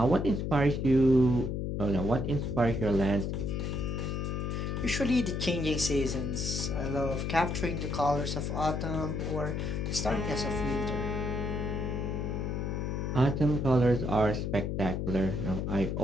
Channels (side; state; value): left; noise; hum, 1 dB below the sound